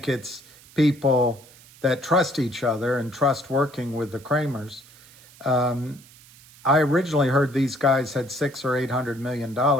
it's people that trust each other and trust working with the Kramers. I originally heard these guys had $600 or $800 million.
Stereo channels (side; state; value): right; noise; hiss, 24 dB below the sound